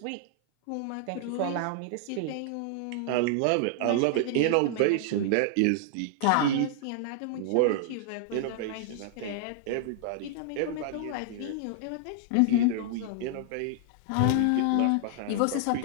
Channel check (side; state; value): both; different; correlation -0.01